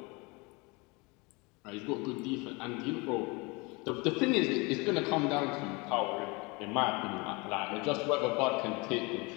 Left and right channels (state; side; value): quieter; right; 27.0 dB